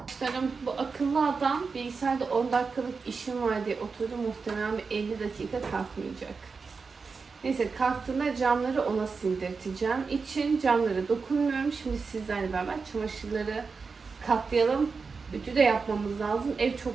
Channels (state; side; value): quieter; left; 4.8 dB